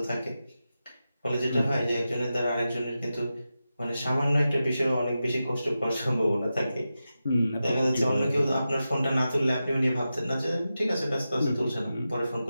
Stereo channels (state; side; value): inverted; both; correlation -0.92